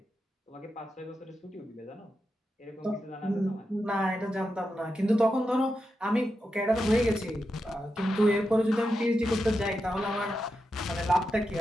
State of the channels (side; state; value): both; normal; correlation 0.88